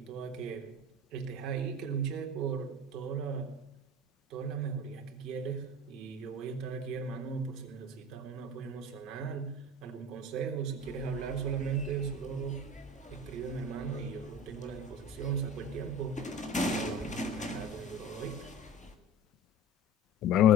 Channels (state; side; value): normal; both; correlation 0.36